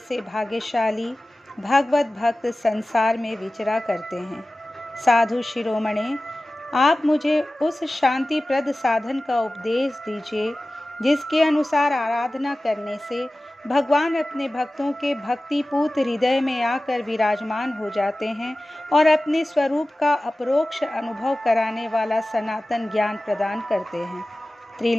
भाग्यशाली भगवत भक्त संसार में विचरा करते हैं। साधु शिरोमणे, आप मुझे उस शांतिप्रद साधन का उपदेश दीजिए जिसके अनुसार आराधना करने से भगवान अपने भक्तों के भक्तिपूत हृदय में आकर विराजमान हो जाते हैं और अपने स्वरूप का अपरोक्ष अनुभव कराने वाला सनातन ज्ञान प्रदान करते हैं।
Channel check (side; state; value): both; normal; correlation 0.97